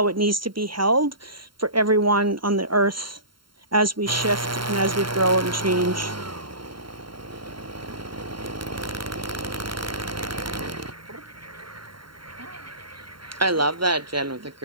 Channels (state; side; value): late; left; 0.73 ms